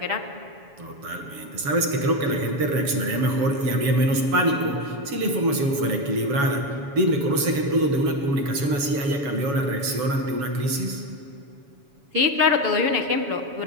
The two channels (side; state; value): left; late; 7.1 ms